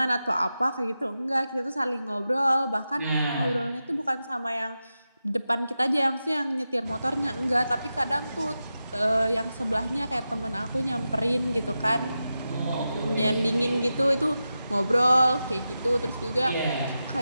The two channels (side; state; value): both; inverted; correlation -0.91